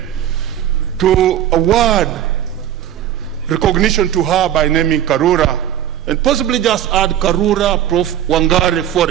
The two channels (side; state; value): left; quieter; 11.0 dB